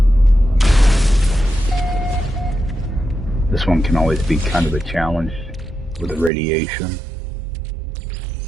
This one can always be kind of a challenge with the radiation.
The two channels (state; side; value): drops out; left; at 6.3 s